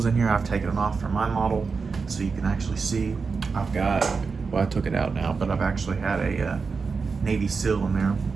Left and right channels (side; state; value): left; quieter; 4.9 dB